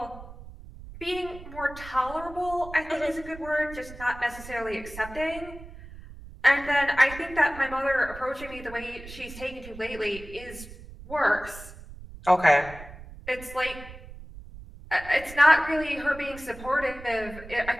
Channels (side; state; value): right; noise; rumble, 15 dB below the sound